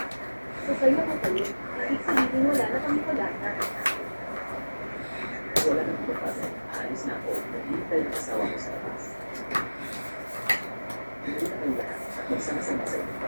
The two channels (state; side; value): inverted; both; correlation -1.00